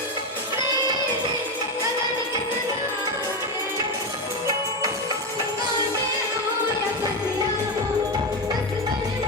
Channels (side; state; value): both; normal; correlation 0.14